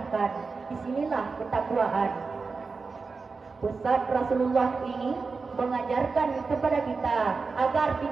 Disinilah ketakwaan. Pesan Rasulullah ini mengajarkan kepada kita agar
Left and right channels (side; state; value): left; quieter; 4.5 dB